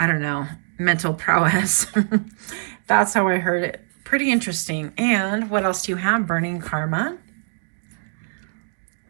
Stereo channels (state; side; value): silent; left; digital silence